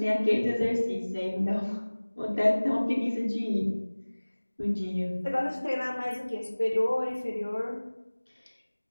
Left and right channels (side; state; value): both; inverted; correlation -1.00